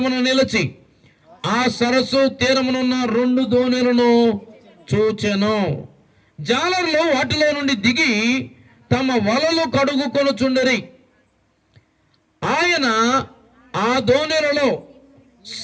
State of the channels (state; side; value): identical; both; correlation 1.00